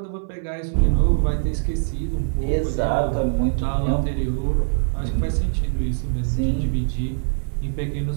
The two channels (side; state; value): left; silent; 62 dB below the other